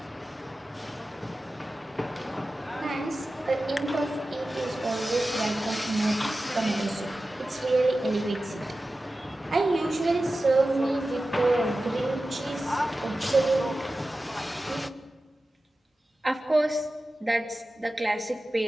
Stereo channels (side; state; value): both; normal; correlation 0.95